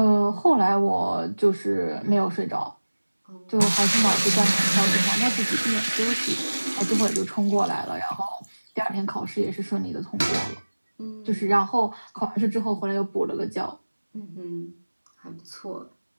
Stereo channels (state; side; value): inverted; both; correlation -1.00